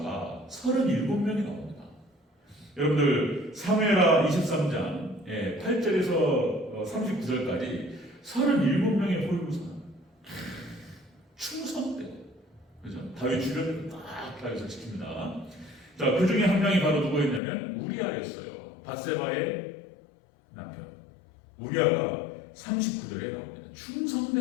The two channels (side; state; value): right; drops out; at 17.4 s